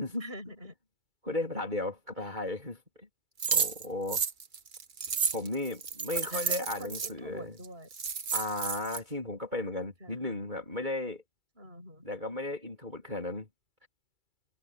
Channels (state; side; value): late; left; 2.3 ms